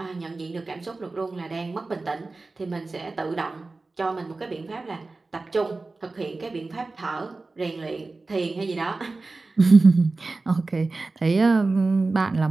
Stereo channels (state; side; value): quieter; left; 3.5 dB